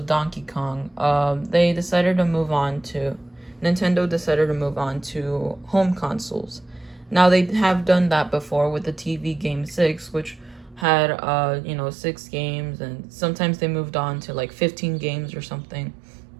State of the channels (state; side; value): drops out; left; at 10.9 s